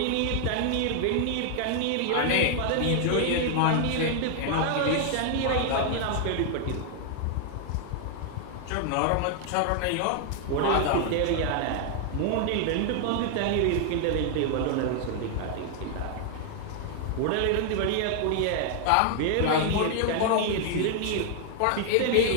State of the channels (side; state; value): both; different; correlation 0.00